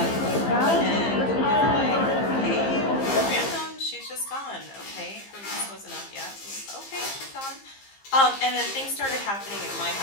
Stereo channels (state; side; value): late; right; 15 ms